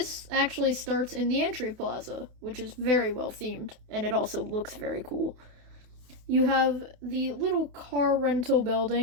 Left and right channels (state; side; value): late; left; 28 ms